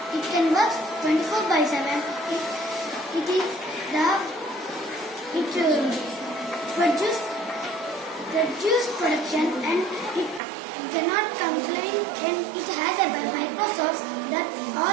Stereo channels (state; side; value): drops out; left; at 10.4 s